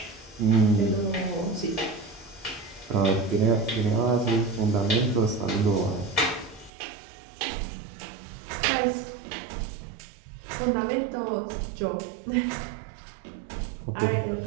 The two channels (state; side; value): drops out; left; at 6.7 s